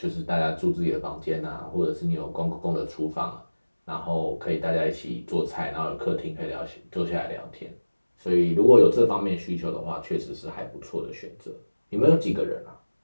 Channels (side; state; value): both; inverted; correlation -1.00